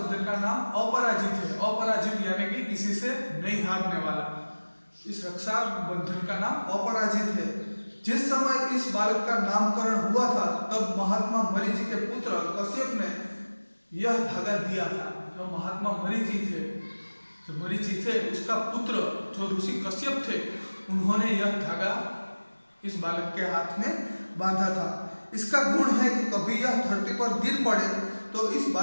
का नाम अपराजित है। अपराजित यानी कि किसी से नहीं हारने वाला, इस रक्षाबंधन का नाम अपराजित है। जिस समय इस बालक का नामकरण हुआ था तब महात्मा मरीचि के पुत्र कश्यप ने यह धागा दिया था। जो महात्मा मरीचि थे, जो मरीचि थे उसका पुत्र जो ऋषि कश्यप थे, उन्होंने यह धागा इस बालक के हाथ में बांधा था। इसका गुण है कि कभी यह धरती पर गिर पड़े तो इस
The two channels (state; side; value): inverted; both; correlation -1.00